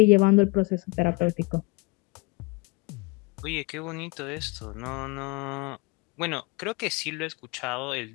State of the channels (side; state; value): right; quieter; 26.1 dB